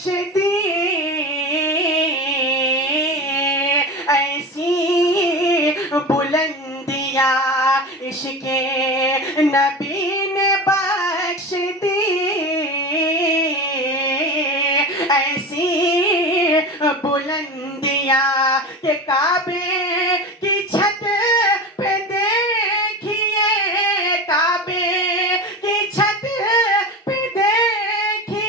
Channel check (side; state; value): both; normal; correlation 0.28